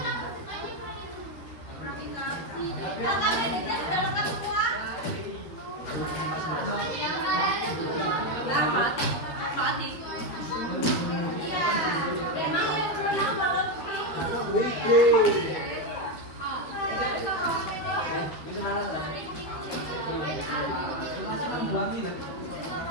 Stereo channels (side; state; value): right; late; 12 ms